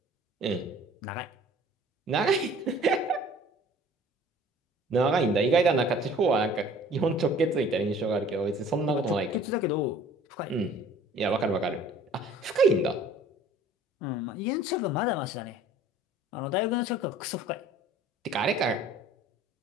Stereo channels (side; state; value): both; normal; correlation 0.50